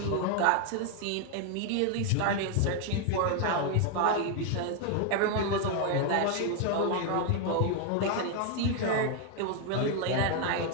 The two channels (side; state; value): both; different; correlation 0.01